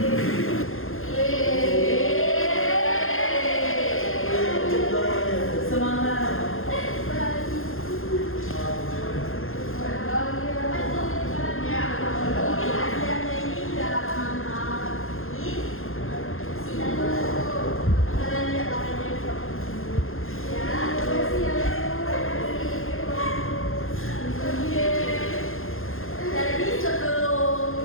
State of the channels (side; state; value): right; late; 0.60 ms